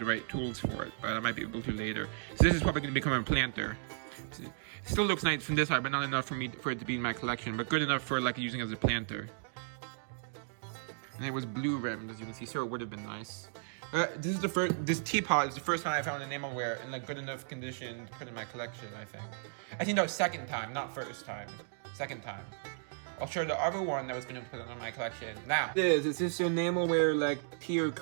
right tools for it, but I might be able to later. So this is probably going to become a planter. It still looks nice from this side, but not enough for it to be in my collection, but good enough for like using as a planter. And it was blue rimmed, as you can see, so it would have been nice. This teapot is the first time I found enamelware in like good enough condition to put in my collection, I think. I think that was second time, not first time. Second time. I'll show the other one that was going to put it on my collection now. It's this enamelware like tea or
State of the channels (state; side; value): silent; left; digital silence